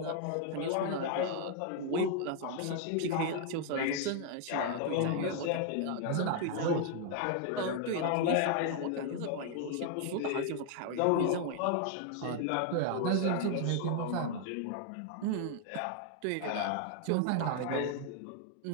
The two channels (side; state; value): both; different; correlation 0.00